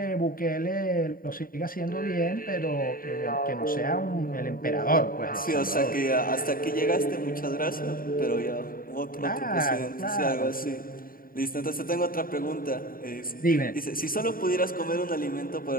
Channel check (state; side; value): late; right; 0.41 ms